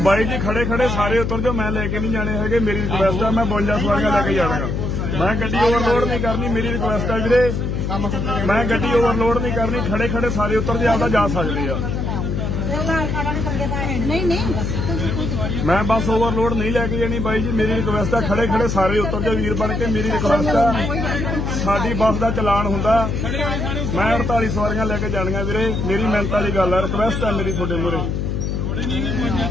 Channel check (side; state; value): left; noise; hum, 1 dB below the sound